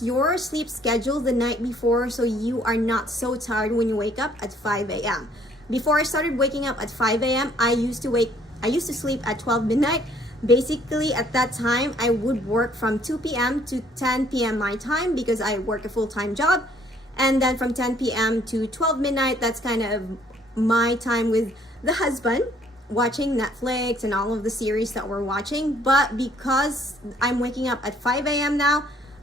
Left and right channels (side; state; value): both; normal; correlation 0.62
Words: your sleep schedule the night before so you are not so tired when you wake up at 5 a.m. Before I started waking up at 5 a.m., I used to sleep at 12 midnight. Basically, at that time, I would work from 2 p.m. to 10 p.m. my time because I work a full-time job. And then from 10 p.m. to 12 midnight, that's kind of my time with the husband, watching Netflix and all of the series that we're watching. But because I'm waking up at 5 a.m. now,